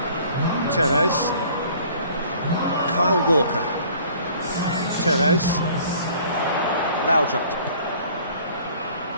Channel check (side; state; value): both; inverted; correlation -0.53